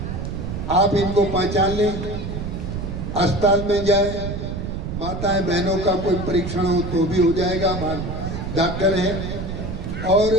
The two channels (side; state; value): right; noise; rumble, 5 dB below the sound